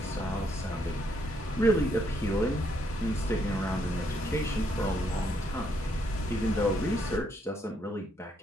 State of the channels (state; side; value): normal; both; correlation 0.73